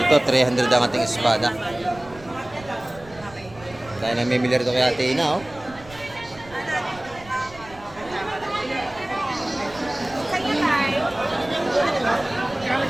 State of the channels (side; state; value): right; noise; rumble, 20 dB below the sound